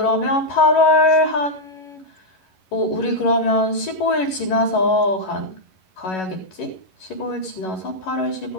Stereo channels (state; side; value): late; right; 11 ms